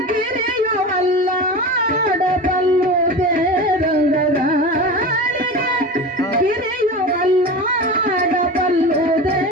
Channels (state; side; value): normal; both; correlation 0.29